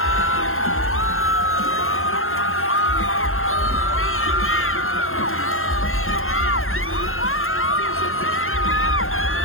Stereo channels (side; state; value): right; late; 0.61 ms